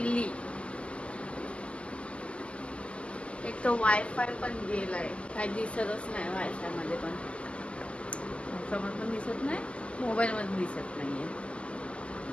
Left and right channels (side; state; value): right; late; 0.056 ms